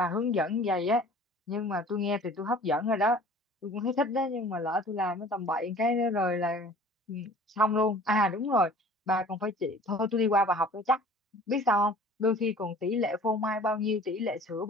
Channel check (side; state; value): both; normal; correlation 0.47